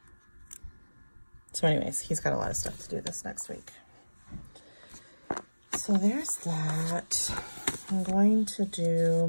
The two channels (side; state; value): both; inverted; correlation -1.00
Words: So anyways, he's got a lot of stuff to do this next week. So there's that. I'm going to do